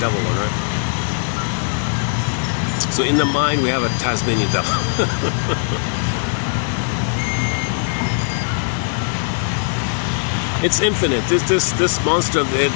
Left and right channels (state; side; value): silent; right; digital silence